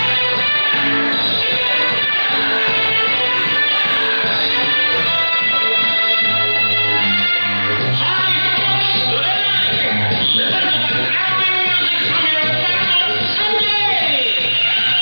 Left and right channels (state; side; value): inverted; both; correlation -1.00